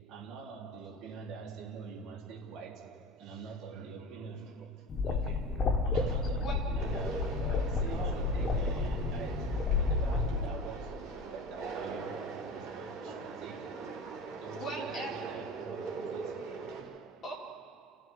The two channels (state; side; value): normal; both; correlation 0.32